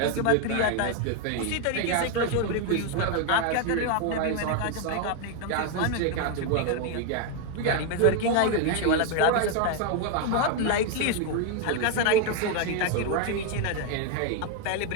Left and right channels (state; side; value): different; both; correlation 0.01